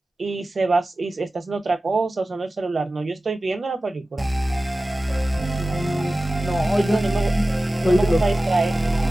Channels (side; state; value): both; normal; correlation 0.96